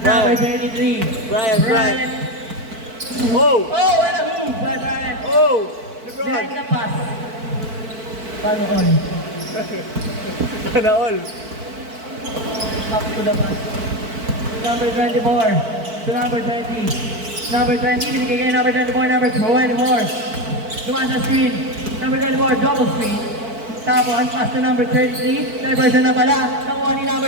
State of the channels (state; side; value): late; left; 4.5 ms